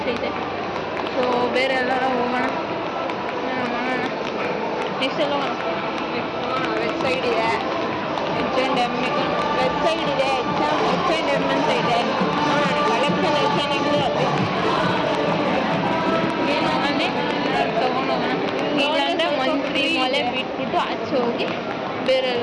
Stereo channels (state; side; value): identical; both; correlation 1.00